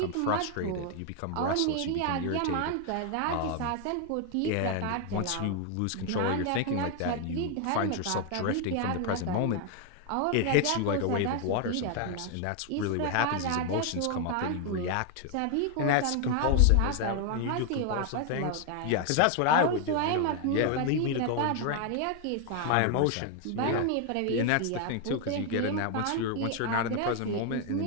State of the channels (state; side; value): different; both; correlation 0.01